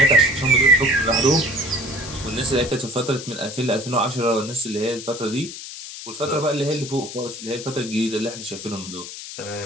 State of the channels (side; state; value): left; noise; hiss, 11 dB below the sound